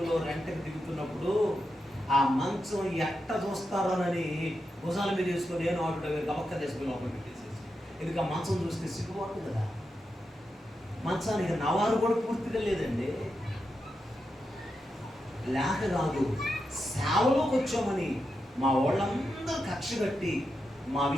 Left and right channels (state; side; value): normal; both; correlation 0.87